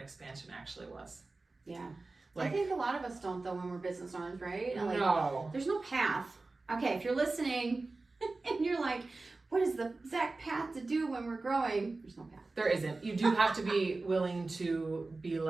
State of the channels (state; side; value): quieter; left; 3.5 dB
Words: actually was. Yeah. I think a lot of us don't, though, when we're business owners, right? No. There's no path. Okay, if you're listening and you're like, what is the exact path to do when we're growing? There's no path. There isn't. You do have to be willing to be